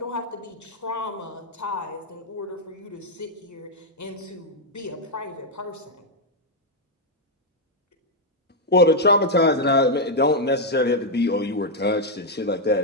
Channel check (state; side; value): normal; both; correlation 0.00